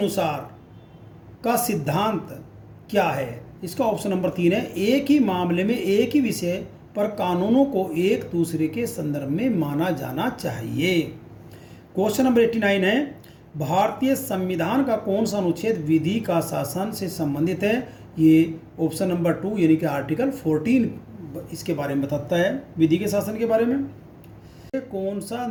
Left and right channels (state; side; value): identical; both; correlation 1.00